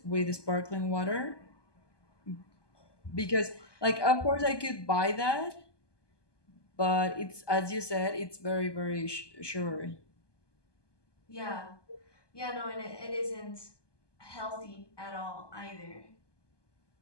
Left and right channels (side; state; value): right; late; 1.2 ms